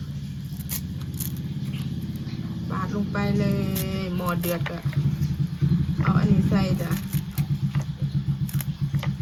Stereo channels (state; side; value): identical; both; correlation 1.00